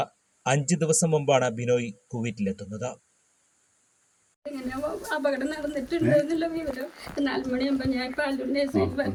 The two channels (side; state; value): both; identical; correlation 1.00